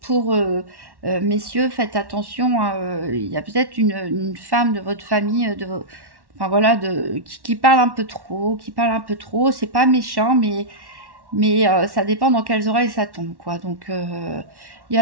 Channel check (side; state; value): left; late; 1.1 ms